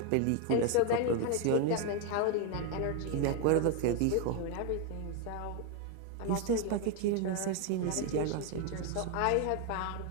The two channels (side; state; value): both; different; correlation 0.01